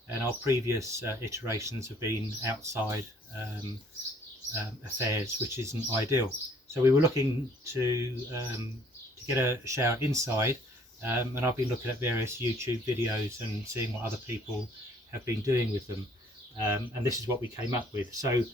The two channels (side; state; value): both; normal; correlation 0.60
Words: And our previous iterations have been outside affairs, which isn't ideal. So we were looking to get a shower inside, and I've been looking at various YouTube videos and seeing what other people have been doing with them. And this is what we came up with. So